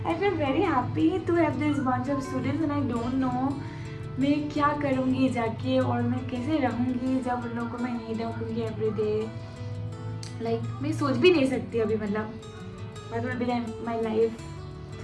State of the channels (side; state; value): both; identical; correlation 1.00